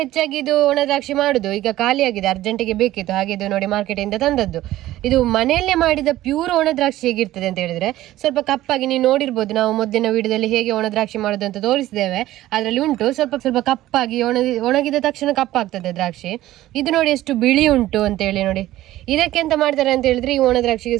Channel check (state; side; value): quieter; left; 15.1 dB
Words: ಹೆಚ್ಚಾಗಿ ಇದು ಒಣ ದ್ರಾಕ್ಷಿ ಮಾಡುದು. ಈಗ ಖಾಲಿಯಾಗಿದೆ, ಅರ್ಜೆಂಟಿಗೆ ಬೇಕಿತ್ತು, ಹಾಗೆ ಇದು ನೋಡಿ ಮಾರ್ಕೆಟ್ ಇಂದ ತಂದದ್ದು. ಇದು ಮನೆಯಲ್ಲೇ ಮಾಡಿದ ಪ್ಯೂರ್ ಒಣ ದ್ರಾಕ್ಷಿ ಹೇಗಿರ್ತದೆ ಅಂತ ಹೇಳಿದ್ರೆ ಸ್ವಲ್ಪ ಕಪ್ಪಾಗಿ, ನೀವು ನೋಡಿರ್ಬೋದು, ನಾವು ಮೊದಲಿನ ವಿಡಿಯೋದಲ್ಲಿ ಹೇಗೆ ಒಣ ದ್ರಾಕ್ಷಿ ಮಾಡೋದು ಅಂತ ತೋರಿಸಿದ್ದೇವೆ. ಅದರಲ್ಲಿ ಉಂಟು ಸ್ವಲ್ಪ ಕಪ್ಪಾಗಿ, ಒಣಗಿದ ತಕ್ಷಣ ಕಪ್ಪಾಗ್ತದೆ ದ್ರಾಕ್ಷಿ. ಇದು ನೋಡಿ ಎಷ್ಟು ಬಿಳಿ ಉಂಟು ಅಂತ ಹೇಳಿ ನೋಡಿ. ಇದಕ್ಕೆ ಎಂತ ಮಾಡ್ತಾರೆ ಅಂತ ಹೇಳಿದ್ರೆ, ಈ ಒಣ ದ್ರಾಕ್ಷಿಗೆ